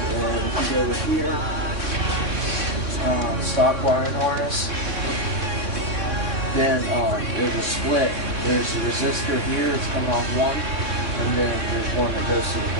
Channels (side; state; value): left; late; 3.6 ms